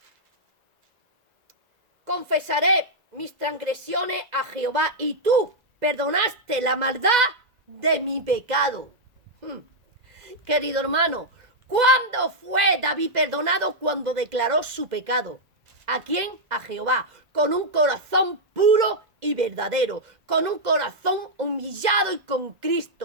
Confesaré mis transgresiones a Jehová, y tú perdonaste la maldad de mi pecado. Querido hermano, ¿cuándo fue David perdonado? Cuando declaró su pecado. ¿A quién? A Jehová, con un corazón puro y verdadero, con un corazón humillado y con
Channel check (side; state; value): left; late; 2.0 ms